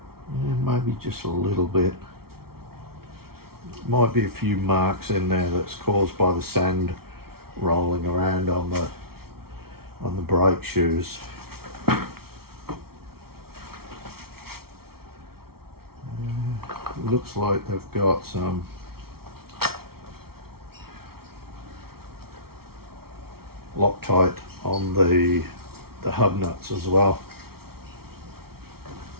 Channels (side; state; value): left; late; 0.94 ms